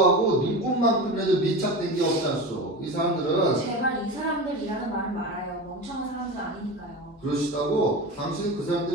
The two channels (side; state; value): both; normal; correlation 0.27